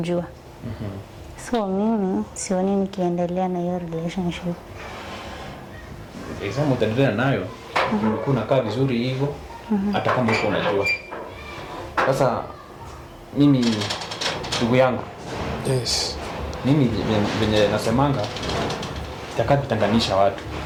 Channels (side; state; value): both; identical; correlation 1.00